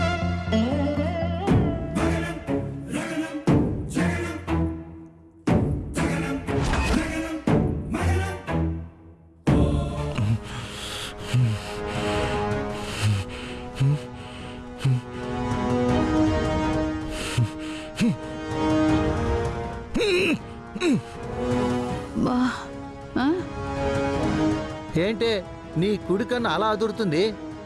ఏంటే నీ కుడి కన్ను అలా అదురుతుంది?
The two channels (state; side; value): identical; both; correlation 1.00